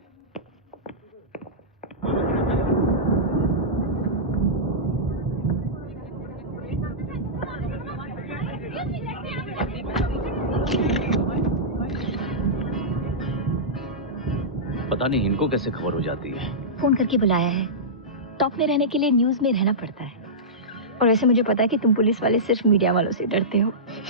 पता नहीं इनको कैसे खबर हो जाती है। फोन करके बुलाया है। टॉप में रहने के लिए न्यूज में रहना पड़ता है। और वैसे मुझे पता है कि तुम पुलिस वाले सिर्फ मीडिया वालों से डरते हो।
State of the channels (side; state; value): both; normal; correlation -0.15